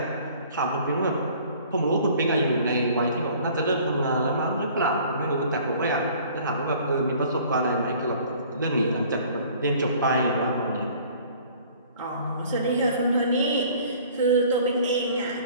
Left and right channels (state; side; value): inverted; both; correlation -0.52